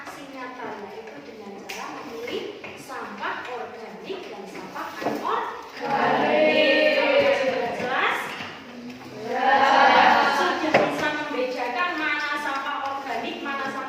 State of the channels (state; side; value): identical; both; correlation 1.00